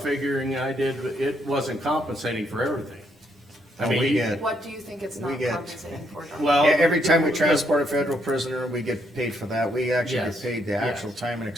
figuring I did, it wasn't compensating for everything. I we mean, get, what do you think it's We not get- compensating for, Don? well. every time we transport a federal prisoner, we get paid for that. We actually Yes. get paid the actual Yes. time and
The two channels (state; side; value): normal; both; correlation 0.74